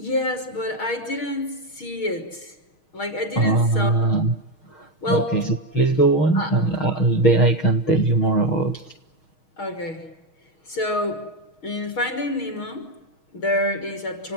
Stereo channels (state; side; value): late; right; 6.4 ms